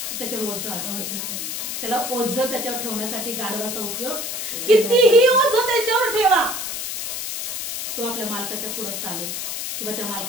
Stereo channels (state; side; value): noise; left; hiss, 4 dB below the sound